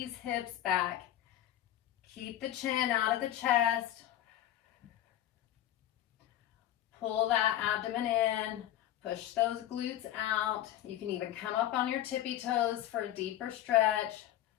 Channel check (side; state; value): right; quieter; 12.6 dB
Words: hips back. Keep the chin out of the chest. Pull that abdomen in. Push those glutes out. You can even come up on your tippy toes for a deeper stretch.